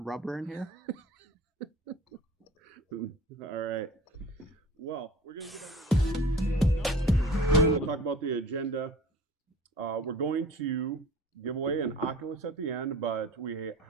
rubber in here? All right. Well, we're going to we'll talk about the agenda. We're going to give away an Oculus at the end, but we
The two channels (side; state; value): both; normal; correlation 0.43